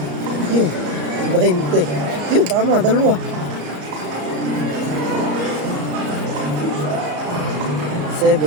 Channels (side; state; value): left; late; 34 ms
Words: Yun. 20. Yun, tama. Dalawa. 7.